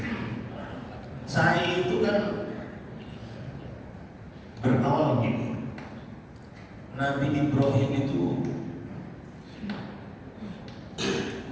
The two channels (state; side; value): identical; both; correlation 1.00